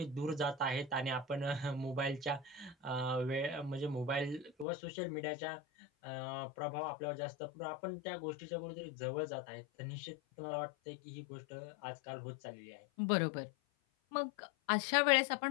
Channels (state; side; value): drops out; right; at 4.7 s